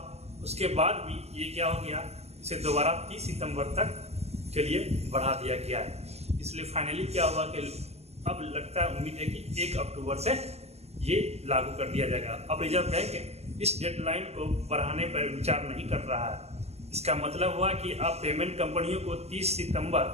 उसके बाद भी ये क्या हो गया, इसे दोबारा 30 सितंबर तक के लिए बढ़ा दिया गया है। इसलिए फाइनली क्या हुआ कि अब लगता है, उम्मीद है कि 1 अक्टूबर से ये लागू कर दिया जाएगा। अब रिजर्व बैंक इस डेडलाइन को बढ़ाने पर विचार नहीं कर रहा है। इसका मतलब हुआ कि अब पेमेंट कंपनियों को 30 सितंबर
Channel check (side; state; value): left; late; 0.30 ms